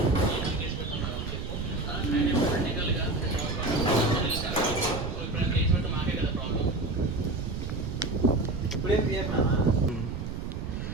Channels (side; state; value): right; noise; rumble, 5 dB below the sound